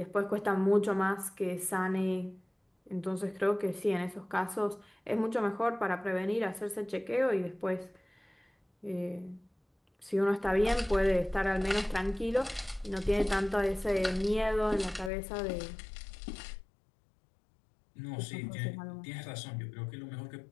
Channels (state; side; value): drops out; right; at 15.1 s